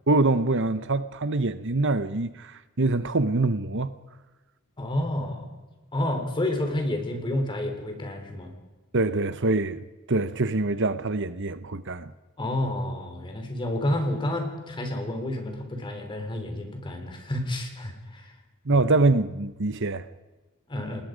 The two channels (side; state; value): both; normal; correlation 0.40